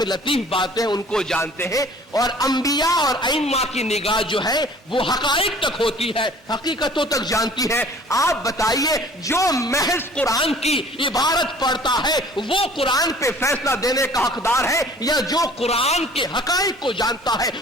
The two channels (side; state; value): both; normal; correlation 0.50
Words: लतीफ बातें उनको जानते हैं। और अंबिया और अइम्मा की निगाह जो है वो हकाइक तक होती है, हकीकतों तक जानती है। आप बताइए जो महज कुरान की इबारत पढ़ता है वो कुरान पे फैसला देने का हकदार है, या जो कुरान के हकाइक को जानता है